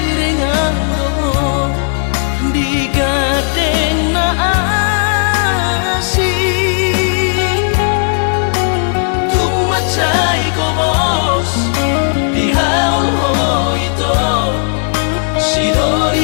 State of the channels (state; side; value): silent; right; digital silence